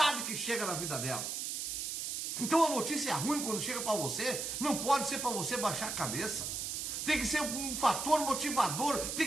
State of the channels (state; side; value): noise; right; hiss, 3 dB below the sound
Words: que chegam na vida dela. Então a notícia ruim, quando chega para você, não pode ser para você baixar a cabeça. Tem que ser um fator motivador, tem